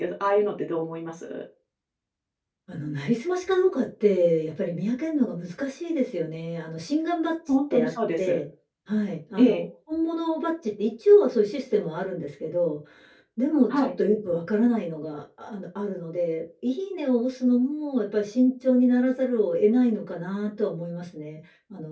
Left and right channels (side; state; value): both; identical; correlation 1.00